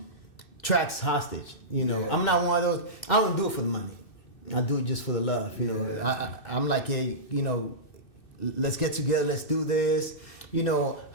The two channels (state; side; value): late; right; 2.6 ms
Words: tracks hostage. I'm not one of those. I don't do it for the money. I do it just for the love. I'm like, hey, let's get together. Let's do this.